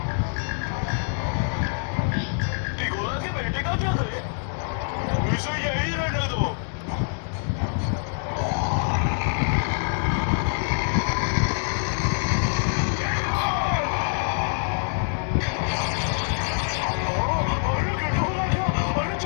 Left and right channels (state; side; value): silent; right; digital silence